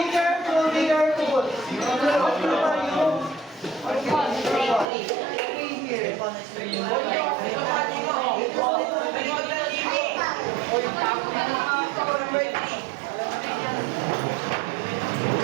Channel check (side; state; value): left; drops out; at 4.9 s